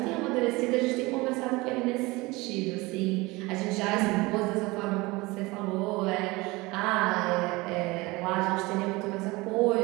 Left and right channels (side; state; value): left; quieter; 22.7 dB